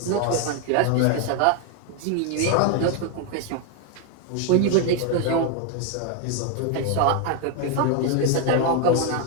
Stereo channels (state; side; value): different; both; correlation 0.01